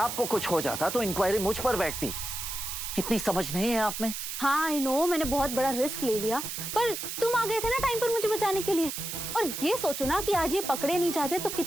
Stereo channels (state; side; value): noise; right; hiss, 5 dB below the sound